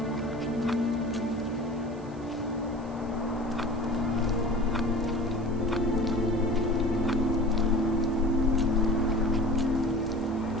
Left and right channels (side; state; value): right; noise; hiss, 28 dB below the sound